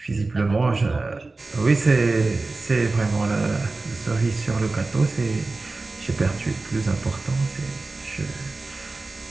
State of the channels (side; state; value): left; quieter; 3.5 dB